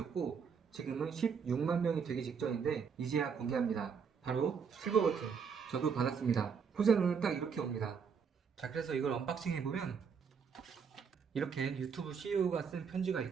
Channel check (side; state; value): left; quieter; 6.4 dB